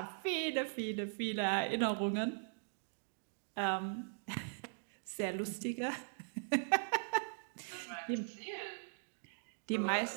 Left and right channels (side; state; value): left; silent; digital silence